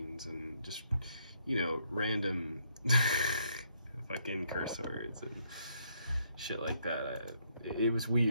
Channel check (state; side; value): inverted; both; correlation -0.72